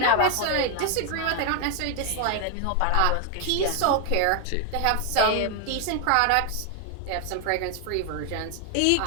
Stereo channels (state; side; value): different; both; correlation 0.00